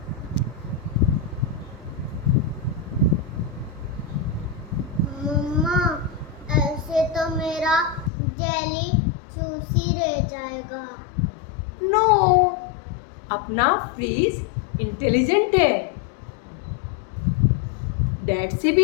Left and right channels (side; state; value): right; drops out; at 8.1 s